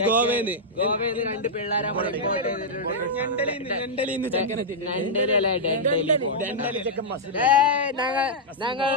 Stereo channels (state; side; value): normal; both; correlation -0.08